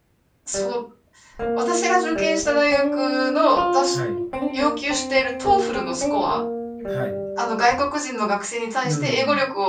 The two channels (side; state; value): both; identical; correlation 1.00